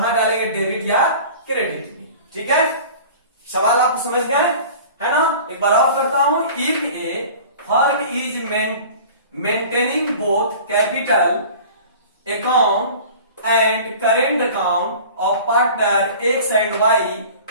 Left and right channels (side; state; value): both; inverted; correlation -0.42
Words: डालेंगे, डेबिट या क्रेडिट में। ठीक है, सवाल आप समझ गए है ना। एक बार और करता हूं, if a firm is maintaining both capital account and current account of partner X and Y,